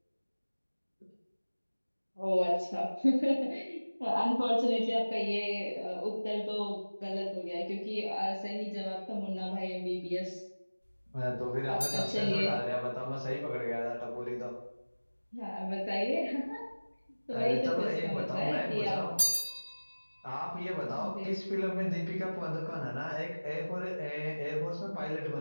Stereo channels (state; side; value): inverted; both; correlation -1.00